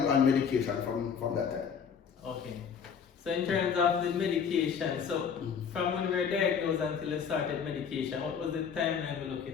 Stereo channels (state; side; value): quieter; right; 6.9 dB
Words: on medication from that time. Okay. So in terms of the medication, so from when we were diagnosed until you started medication, what was the timeline we're